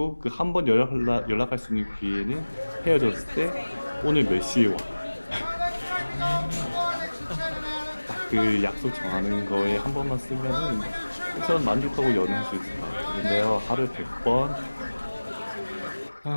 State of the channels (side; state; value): both; inverted; correlation -1.00